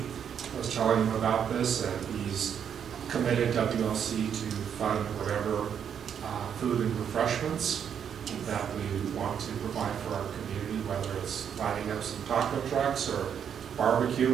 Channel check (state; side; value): quieter; left; 8.1 dB